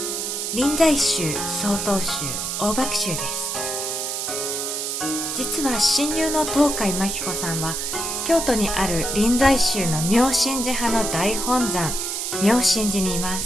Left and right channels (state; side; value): noise; right; hiss, 3 dB below the sound